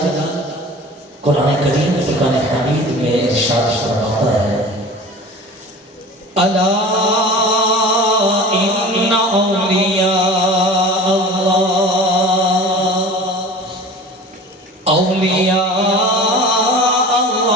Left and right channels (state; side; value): normal; both; correlation 0.39